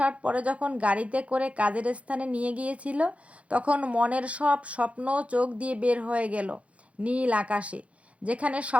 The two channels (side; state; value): left; late; 0.063 ms